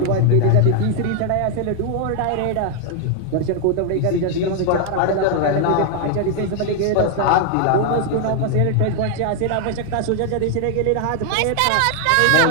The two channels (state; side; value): different; both; correlation 0.00